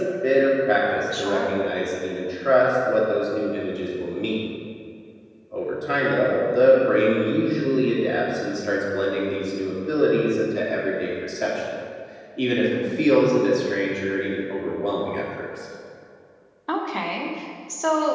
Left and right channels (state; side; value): identical; both; correlation 1.00